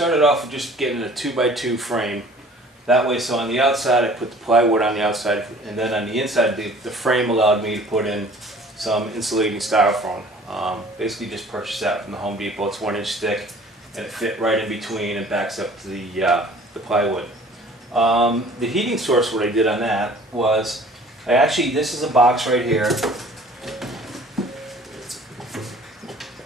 off with just getting a 2x2 frame. That way, so on the outside I put the plywood on the outside, and then on the inside the frame allowed me to put in some insulating styrofoam. Basically just purchased that from the Home Depot. It's 1 inch thick and it fit right in between and backs up to the plywood. The heating source, what I did on that was, this is a box right here.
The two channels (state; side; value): normal; both; correlation 0.50